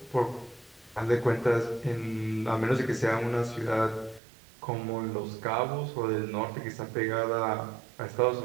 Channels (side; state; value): left; drops out; at 4.2 s